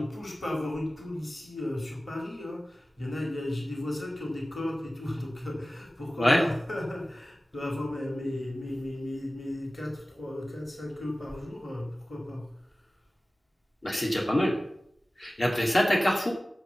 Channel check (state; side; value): normal; both; correlation 0.96